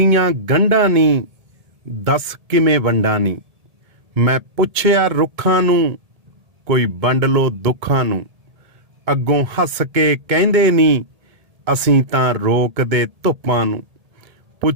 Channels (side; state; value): left; late; 1.7 ms